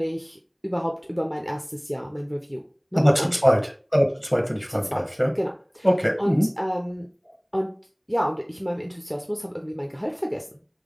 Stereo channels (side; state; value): both; identical; correlation 1.00